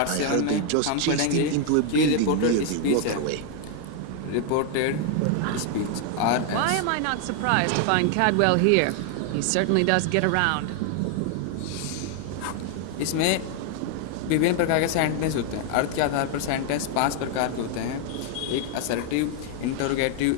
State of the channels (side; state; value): both; different; correlation 0.00